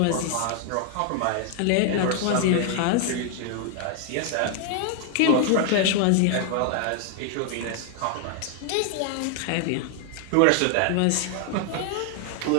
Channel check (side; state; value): both; different; correlation 0.00